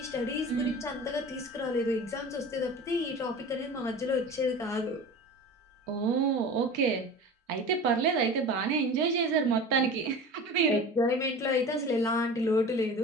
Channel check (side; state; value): both; normal; correlation 0.36